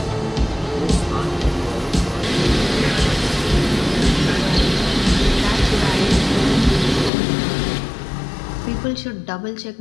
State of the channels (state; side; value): drops out; right; at 7.1 s